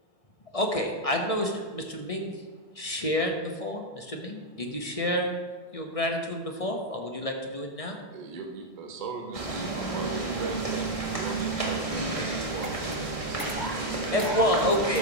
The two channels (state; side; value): late; right; 1.6 ms